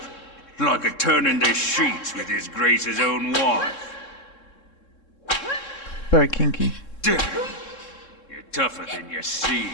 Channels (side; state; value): right; late; 3.7 ms